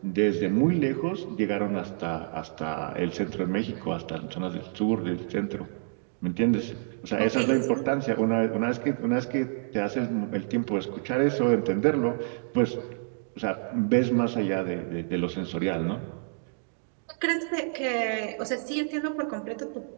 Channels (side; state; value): left; silent; digital silence